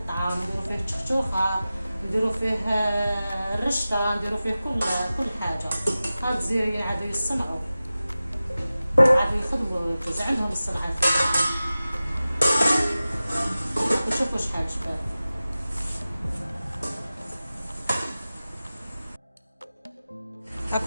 نديرو فيه التشخشوخه، نديرو فيه الرشته، نديرو فيه كل حاجه. هاد الجزائريين عادوا يصنعوا، عادوا يخدموا، يجوز عندهم الصنعه فيه. وشوفوا شحال شباب.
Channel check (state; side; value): inverted; both; correlation -0.95